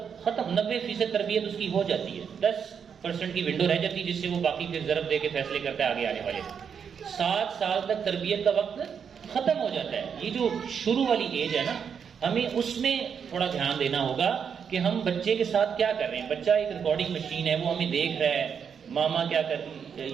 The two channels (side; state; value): left; quieter; 7.1 dB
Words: ختم. 90% تربیت اس کی ہو جاتی ہے، 10% کی ونڈو رہ جاتی ہے جس سے وہ باقی پھر ضرب دے کے فیصلے کرتا ہے آگے آنے والے. 7 سال تک تربیت کا وقت ختم ہو جاتا ہے. یہ جو شروع والی ایج ہے نا، ہمیں اس میں تھوڑا دھیان دینا ہوگا کہ ہم بچے کے ساتھ کیا کر رہے ہیں. بچہ ایک ریکارڈنگ مشین ہے، وہ ہمیں دیکھ رہا ہے ماما کیا کرتی.